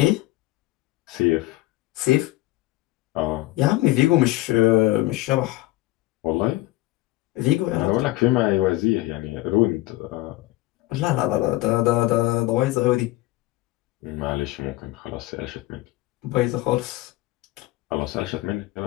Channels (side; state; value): right; quieter; 18.2 dB